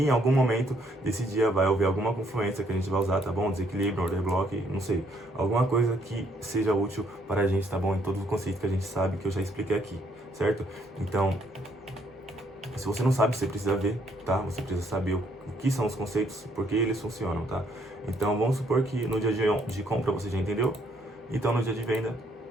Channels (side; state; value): both; normal; correlation 0.69